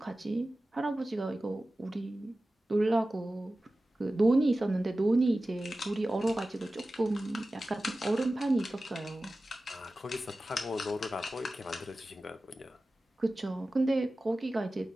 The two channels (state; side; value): normal; both; correlation 0.95